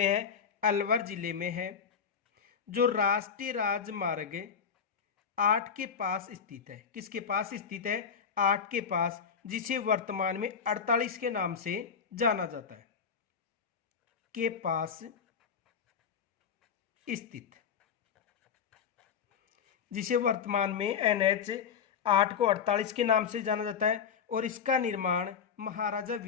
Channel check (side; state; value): right; quieter; 6.9 dB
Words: है? अलवर जिले में है, जो राष्ट्रीय राजमार्ग 8 के पास स्थित है। किसके पास स्थित है? 8 के पास, जिसे वर्तमान में 48 के नाम से जाना जाता है। के पास स्थित, जिसे वर्तमान में NH 8 को 48 के नाम से जाना जाता है। और इसका निर्माण महाराजा